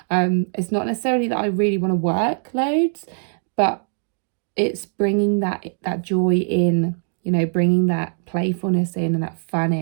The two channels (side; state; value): left; silent; 65 dB below the other